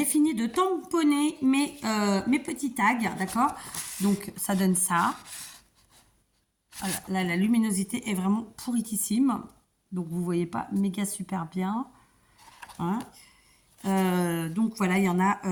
fini de tamponner mes petits tags, d'accord. Donc, ça donne ça. Voilà, là, la luminosité est vraiment pourritissime. Donc, vous voyez pas méga super bien. Hein. Donc voilà, il y en a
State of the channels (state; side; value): identical; both; correlation 1.00